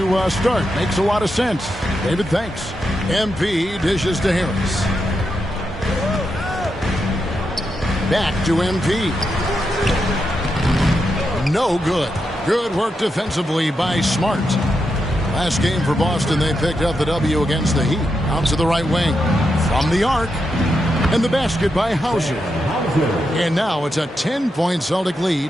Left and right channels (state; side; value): normal; both; correlation 0.85